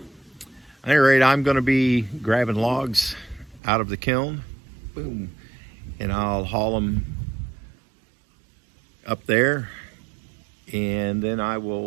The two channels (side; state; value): left; drops out; at 3.6 s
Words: any rate, I'm going to be grabbing logs out of the kiln. Boom. And I'll haul them up there, and then I